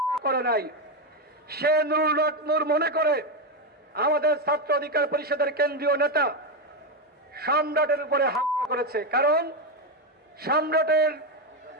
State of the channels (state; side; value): normal; both; correlation 0.09